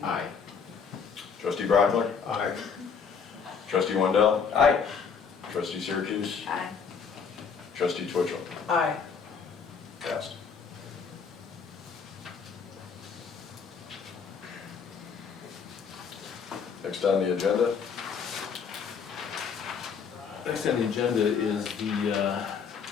aye. Trustee Brockler? Aye. Trustee Wendell? Aye. Trustee Syracuse? Aye. Trustee Twitchell? Aye. Passed. Next on the agenda, Next on the agenda is the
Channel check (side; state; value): right; quieter; 6.1 dB